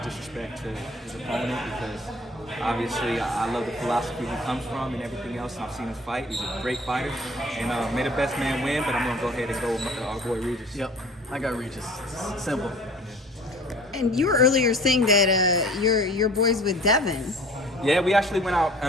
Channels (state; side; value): normal; both; correlation 0.47